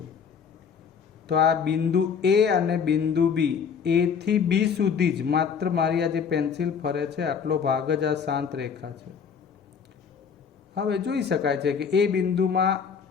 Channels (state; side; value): quieter; right; 6.6 dB